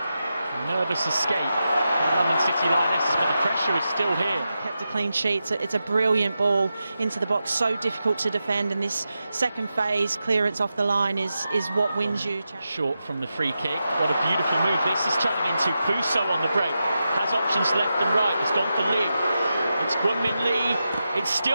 Nervous escape. London City Lionesses, but the pressure is still here. Kept a clean sheet. It's a brilliant ball into the box, so difficult to defend, and this second phase clearance off the line is what wins you. Short from the free kick. What a beautiful move this is turning into. Fuso on the break. Has options left and right. It's gone for Lee. It's Gwynmin Lee. It's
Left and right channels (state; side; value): inverted; both; correlation -0.89